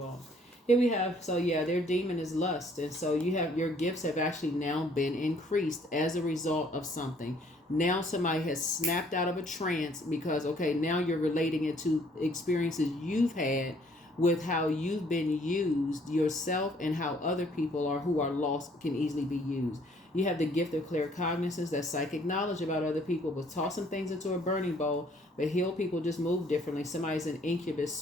Here we have, their demon is lust. And so your gifts have actually now been increased as a result of something. Now somebody has snapped out of a trance because, okay, now you're relating it to experiences you've had with how you've been used yourself and how other people who are lost can easily be used. You have the gift of claircognizance, that's psychic knowledge about other people, but tossing things into a burning bowl. But heal people just move differently. Somebody's an incubus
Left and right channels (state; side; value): normal; both; correlation 0.62